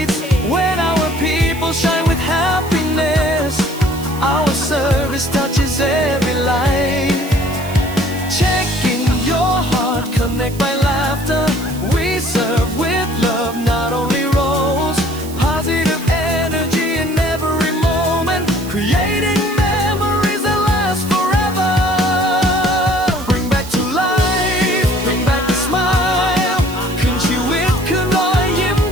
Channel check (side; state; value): right; noise; hiss, 16 dB below the sound